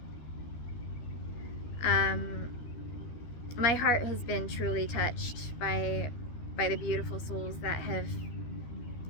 my heart has been truly touched by the beautiful souls that have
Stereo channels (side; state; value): right; late; 13 ms